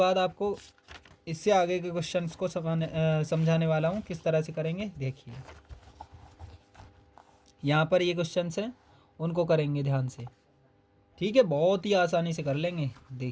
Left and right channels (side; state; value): both; identical; correlation 1.00